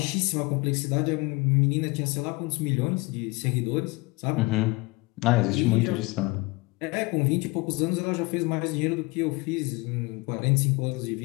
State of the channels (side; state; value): right; quieter; 24.8 dB